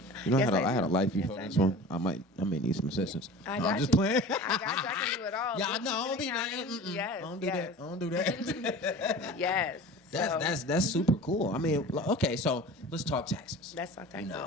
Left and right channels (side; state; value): both; normal; correlation 0.38